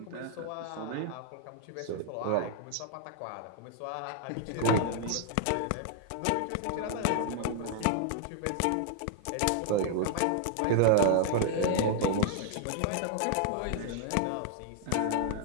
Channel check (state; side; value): different; both; correlation 0.00